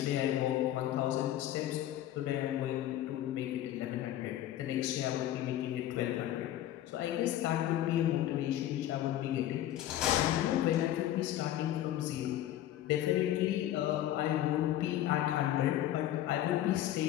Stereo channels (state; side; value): quieter; right; 12.8 dB